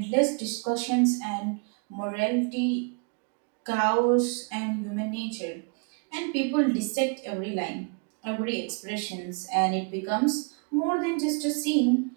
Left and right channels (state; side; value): quieter; left; 37.5 dB